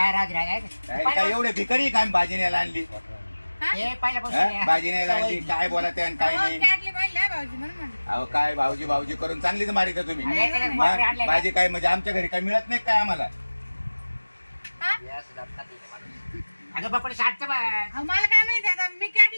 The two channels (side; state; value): both; inverted; correlation -1.00